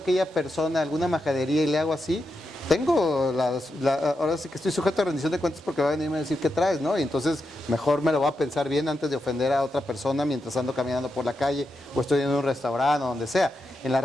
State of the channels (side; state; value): both; normal; correlation 0.86